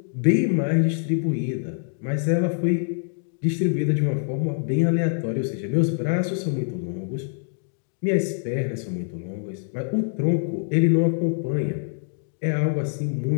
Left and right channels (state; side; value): silent; right; digital silence